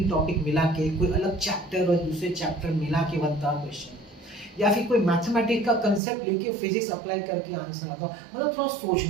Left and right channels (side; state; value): left; drops out; at 6.0 s